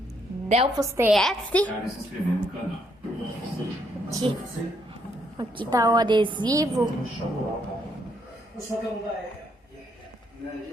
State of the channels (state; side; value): normal; both; correlation 0.73